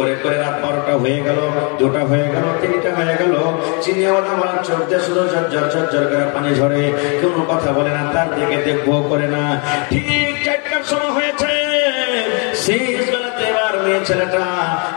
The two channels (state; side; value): quieter; right; 35.1 dB